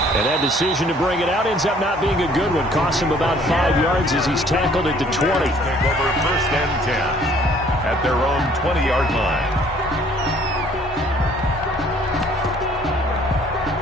And that decision to bring it out ends up not being a good one. Costs him about 5 yards as he's tackled at the 20. Take over 1st and 10 at their own 20-yard line.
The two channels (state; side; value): normal; both; correlation 0.58